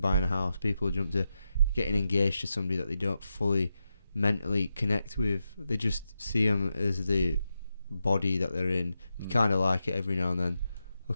a house, people jump to getting engaged to somebody that they don't fully mentally connect with. They just see them as the body that they're in. They kind of like it every now and then. They'll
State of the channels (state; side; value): inverted; both; correlation -0.88